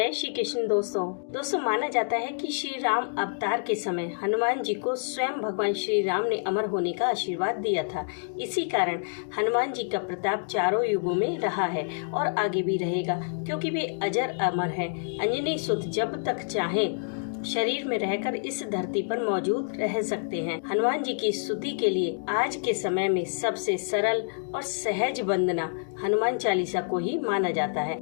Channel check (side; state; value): right; silent; digital silence